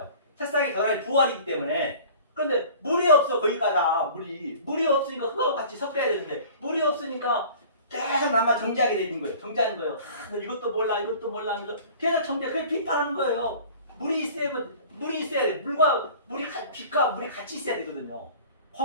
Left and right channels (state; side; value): inverted; both; correlation -0.45